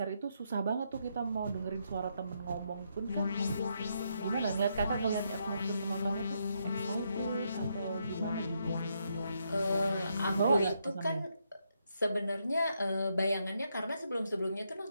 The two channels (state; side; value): inverted; both; correlation -0.78